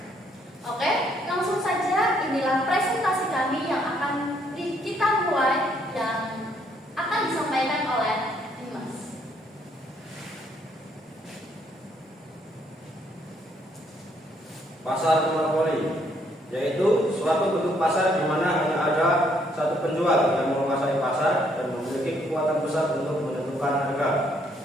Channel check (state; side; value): normal; both; correlation 0.69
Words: Oke, langsung saja inilah presentasi kami yang akan kita mulai yang akan disampaikan oleh Dimas. Pasar monopoli yaitu suatu bentuk pasar di mana hanya ada satu penjual yang menguasai pasar dan memiliki kekuatan besar untuk menentukan harga.